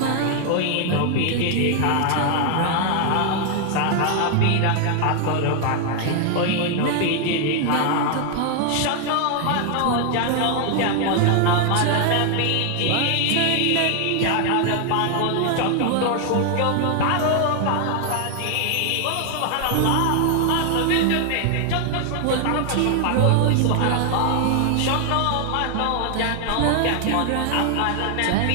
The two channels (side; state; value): both; different; correlation 0.00